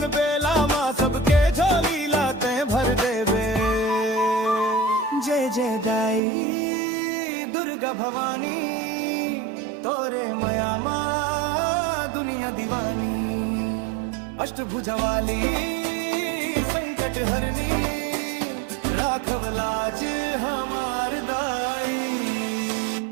बेला मां सबके झोली भर देवे। जय जय दाई दुर्गा भवानी तोरे मया मां दुनिया दीवानी। अष्टभुजा वाली संकट हरनी राखव लाज हमार दाई।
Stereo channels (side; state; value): left; drops out; at 6.2 s